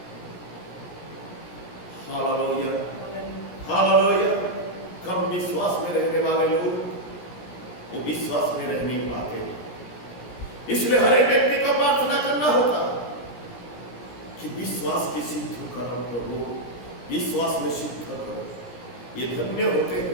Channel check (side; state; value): right; late; 17 ms